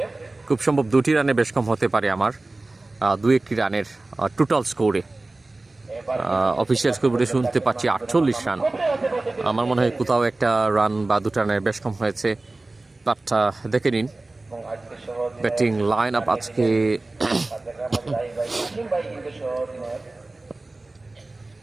খুব সম্ভব 2টি রানে বেশ কম হতে পারে আমার 2-1টি রানের টোটাল স্কোরে। অফিসিয়াল স্কোরে শুনতে পাচ্ছি 48 রান। আমার মনে হয় কোথাও একটা রান বা 2টা রানের বেশ কম হয়েছে। বাট দেখে নিন এবং আজকে সহজ ব্যাটিং লাইন আপ আজকে। কাশিম ভাই কিন্তু সহজ নয়।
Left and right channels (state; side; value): quieter; left; 3.0 dB